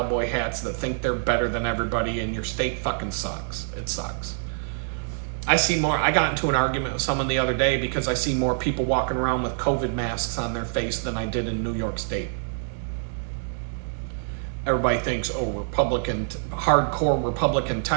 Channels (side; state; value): left; silent; digital silence